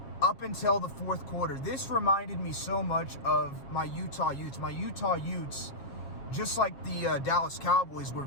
up until the fourth quarter. This reminded me so much of my Utah Utes. My Utah Utes, just like the Dallas Cowboys, were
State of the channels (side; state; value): right; late; 7.3 ms